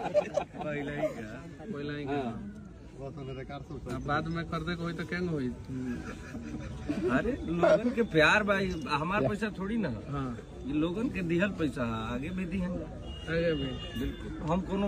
पहले ही बाद में खरीदे को होई तो केंग होई? अरे लोगन के प्यार भाई, हमार पैसा थोड़ी ना। हाँ, ये लोगन के दिहल पैसा आगे भी दिहन। आगे भी बिल्कुल, हम कोनो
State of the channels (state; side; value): identical; both; correlation 1.00